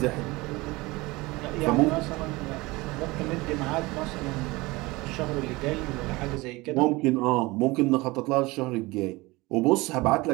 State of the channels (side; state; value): left; quieter; 22.1 dB